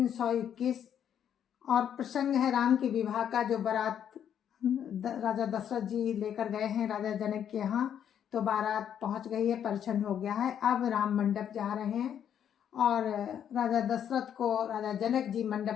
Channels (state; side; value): quieter; right; 9.2 dB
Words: और प्रसंग है राम के विवाह का, जो बारात राजा दशरथ जी लेकर गए हैं राजा जनक के यहाँ। तो बारात पहुंच गई है, परिछन हो गया है। अब राम मंडप जा रहे हैं और राजा दशरथ को राजा जनक जी